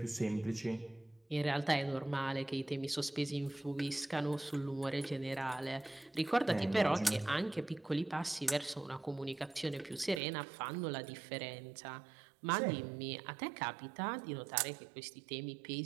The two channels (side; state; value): left; drops out; at 10.2 s